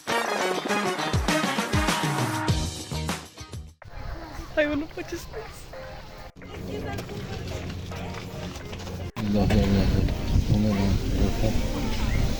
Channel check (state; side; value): identical; both; correlation 1.00